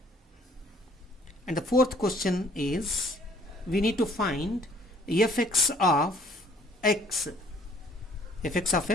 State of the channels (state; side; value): normal; both; correlation 0.59